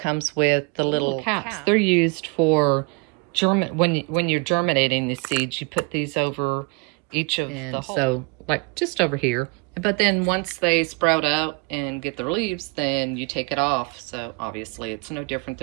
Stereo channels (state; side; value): quieter; left; 31.4 dB